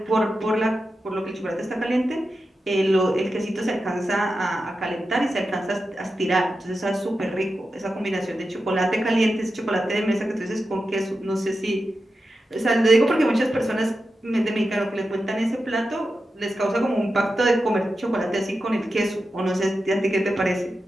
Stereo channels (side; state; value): both; normal; correlation 0.90